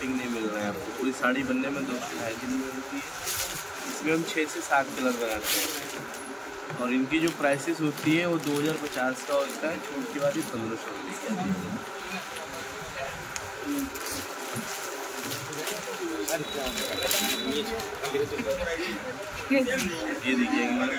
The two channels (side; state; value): both; identical; correlation 1.00